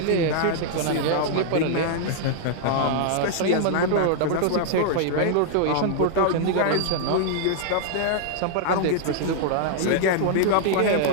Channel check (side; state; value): both; different; correlation -0.01